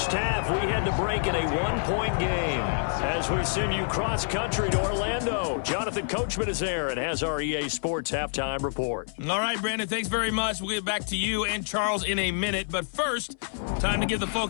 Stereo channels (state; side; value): silent; right; 60 dB below the other